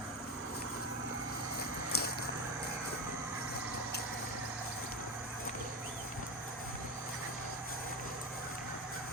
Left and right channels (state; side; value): normal; both; correlation 0.20